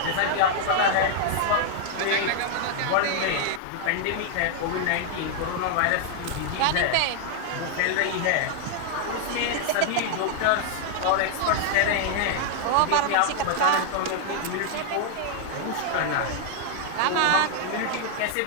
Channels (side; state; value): both; different; correlation 0.00